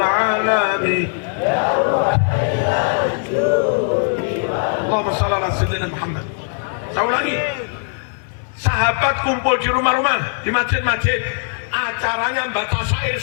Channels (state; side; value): silent; right; 66 dB below the other